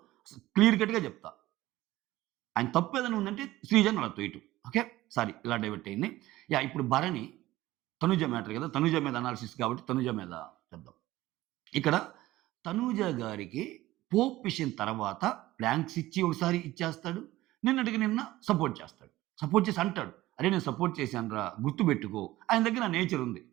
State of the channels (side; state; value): left; quieter; 16.8 dB